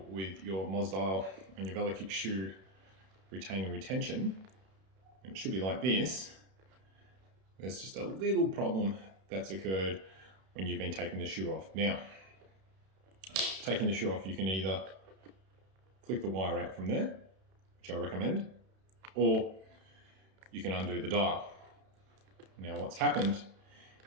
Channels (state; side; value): late; left; 31 ms